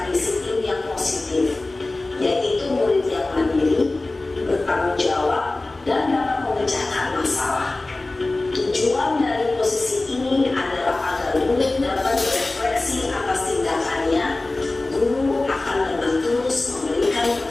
disiplin yang positif, yaitu murid yang mandiri, bertanggung jawab, dan dapat memecahkan masalah. Tujuan dari posisi ini adalah agar murid dapat berefleksi atas tindakannya. Guru akan dengan tulus memberikan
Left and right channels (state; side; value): quieter; right; 3.0 dB